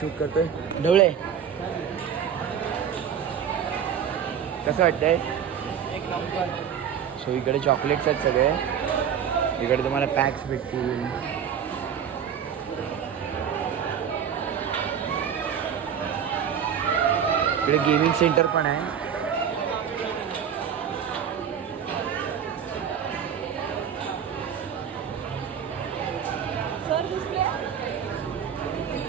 करतोय. ढवळे कसं वाटतंय? एक नंबर. सो इकडे चॉकलेट्स आहेत सगळे. इकडे तुम्हाला पॅक्स भेटतील. इकडे गेमिंग सेंटर पण आहे.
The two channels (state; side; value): quieter; left; 8.2 dB